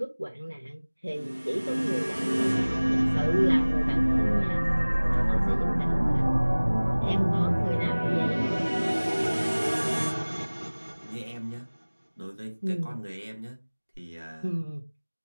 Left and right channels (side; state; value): both; inverted; correlation -1.00